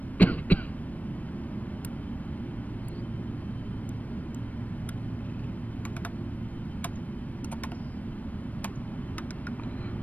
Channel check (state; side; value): late; right; 0.073 ms